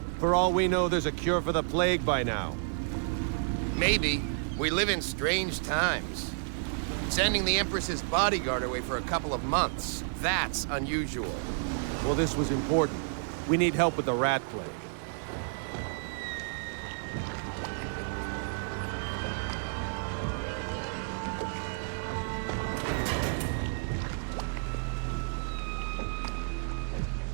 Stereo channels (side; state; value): left; silent; digital silence